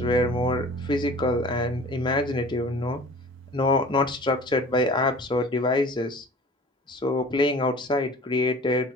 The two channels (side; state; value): both; normal; correlation 0.44